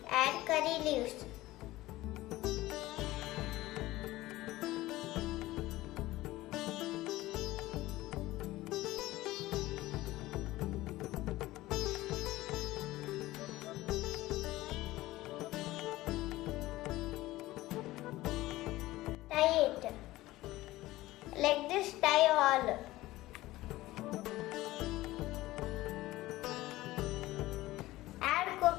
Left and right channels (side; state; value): right; quieter; 17.5 dB